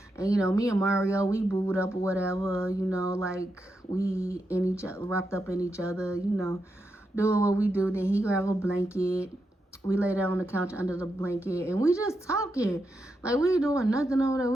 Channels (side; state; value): both; normal; correlation 0.85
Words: and you know, me and Mario, we booed up or whatever, you know, like, we in each other, wrapped up in each other, you know, doing what we do. Then he grabbed a blanket, we lay down on the couch under the blanket, and we just talking. Like, we ain't doing nothing over there.